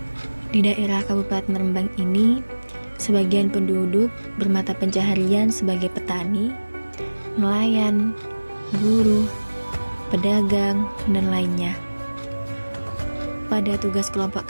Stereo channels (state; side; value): inverted; both; correlation -1.00